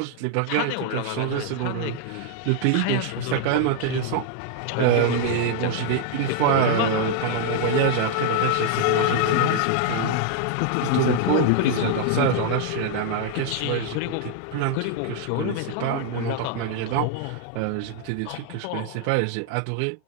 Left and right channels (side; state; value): both; different; correlation 0.00